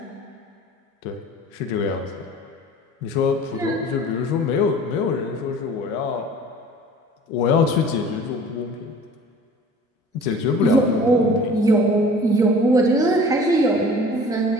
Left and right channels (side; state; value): both; normal; correlation 0.45